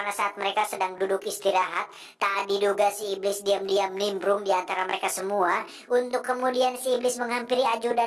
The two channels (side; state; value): both; identical; correlation 1.00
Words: saat mereka sedang duduk istirahat, tak diduga si iblis diam-diam nimbrung di antara mereka semua, untuk kemudian si iblis menghampiri